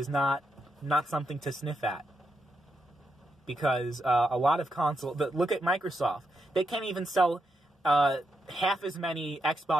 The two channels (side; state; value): both; normal; correlation 0.83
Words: not something to sniff at. Because a lot of look at Microsoft. They can't even sell half as many